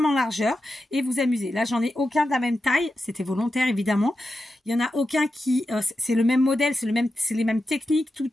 en largeur, et vous amuser. Là, j'en ai aucun de la même taille. C'était volontaire, évidemment. Il y en a aucun qui... c'est le même modèle, c'est les mêmes techniques,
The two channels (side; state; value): both; normal; correlation 0.90